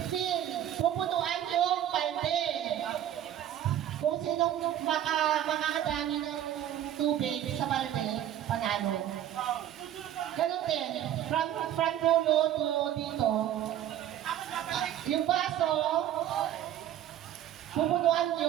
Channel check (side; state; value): left; quieter; 11.5 dB